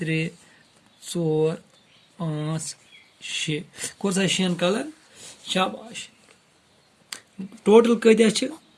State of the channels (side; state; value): both; identical; correlation 1.00